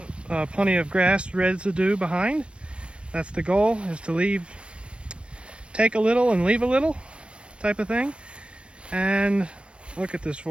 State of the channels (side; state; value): left; late; 0.059 ms